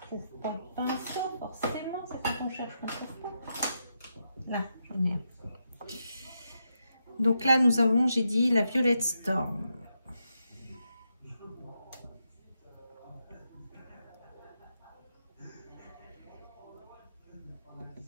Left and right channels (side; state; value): both; inverted; correlation -0.84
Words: trouve pas de pinceau, forcément, c'est quand on cherche qu'on trouve pas. Là, j'en ai un. Donc là, nous avons, j'ai dit, la Violette Storm.